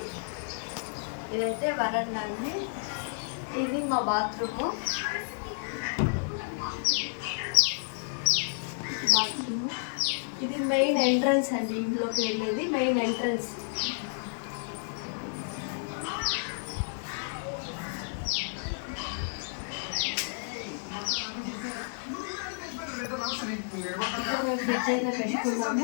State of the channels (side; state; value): right; silent; 57 dB below the other